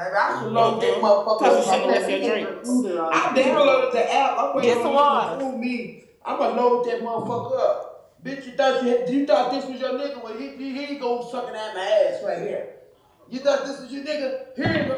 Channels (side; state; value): both; identical; correlation 1.00